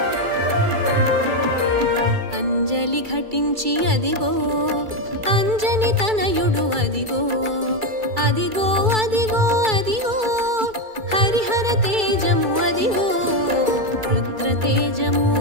అంజలి ఘటించి అదిగో అంజని తనయుడు అదిగో అదిగో అదిగో అదిగో హరిహర తేజము అదిగో రుద్ర తేజము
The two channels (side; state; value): left; late; 2.3 ms